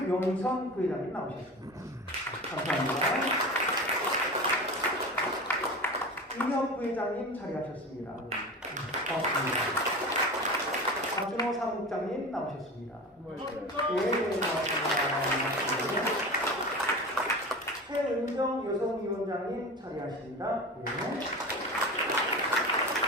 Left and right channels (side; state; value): both; normal; correlation 0.30